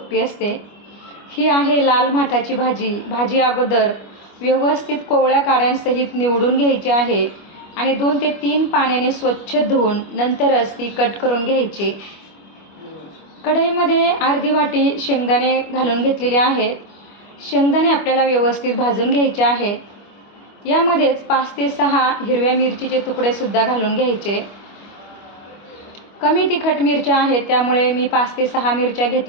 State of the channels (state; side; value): late; right; 25 ms